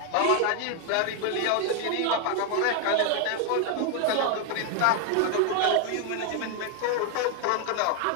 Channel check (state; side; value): different; both; correlation 0.01